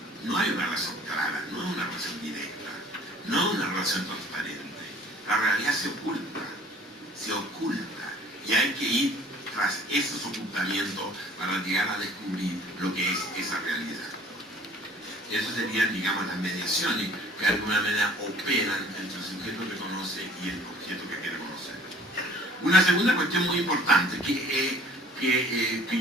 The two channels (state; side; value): normal; both; correlation 0.53